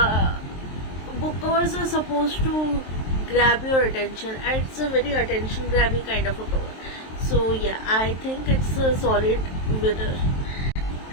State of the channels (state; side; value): late; right; 23 ms